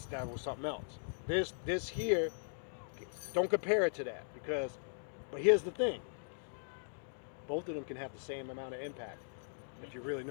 was something else. This here, don't compare it to that but here's the thing. Both of them can have the same amount of impact if you really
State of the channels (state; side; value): silent; right; digital silence